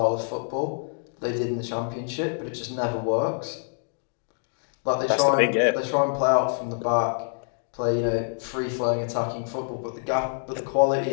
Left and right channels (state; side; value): silent; right; digital silence